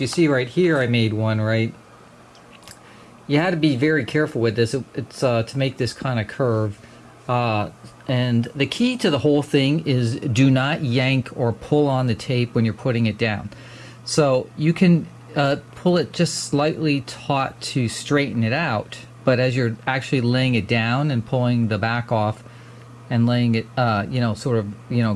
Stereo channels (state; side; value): identical; both; correlation 1.00